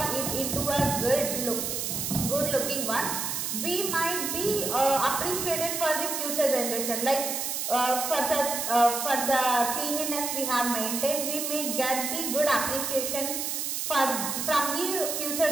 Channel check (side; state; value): right; noise; hiss, 2 dB below the sound